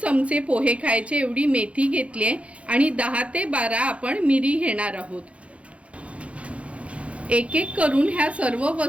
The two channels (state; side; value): late; left; 0.063 ms